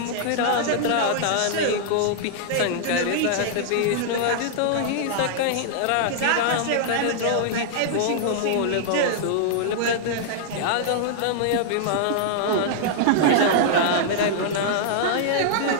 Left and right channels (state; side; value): different; both; correlation -0.01